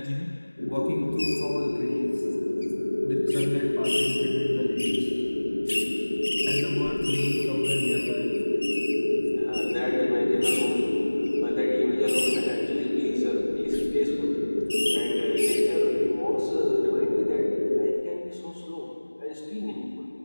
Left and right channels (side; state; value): both; inverted; correlation -1.00